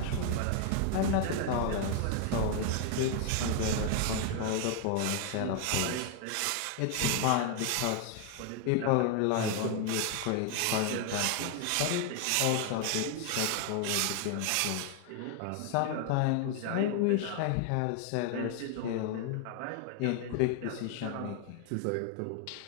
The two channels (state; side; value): different; both; correlation 0.00